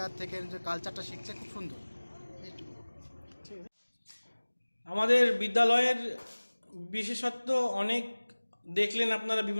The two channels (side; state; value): both; inverted; correlation -1.00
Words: থেকে যে কালচারটা শিখছে খুব সুন্দর। আমাদের বিদ্যালয়ের বিশেষত্ব অনেক দেখলেন আপনারা,